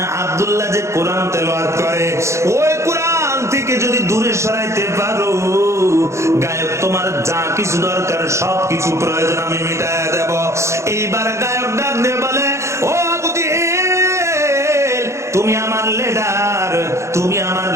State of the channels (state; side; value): late; left; 0.14 ms